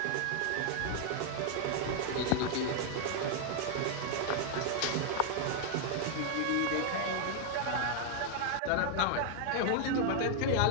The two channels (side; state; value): both; different; correlation 0.00